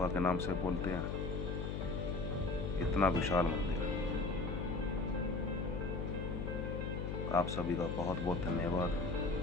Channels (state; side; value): noise; left; hum, 2 dB below the sound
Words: के नाम से बोलते हैं? इतना विशाल मंदिर। आप सभी का बहुत बहुत धन्यवाद